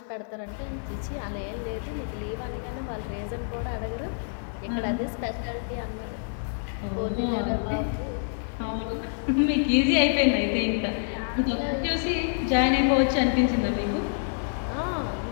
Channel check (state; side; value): silent; right; digital silence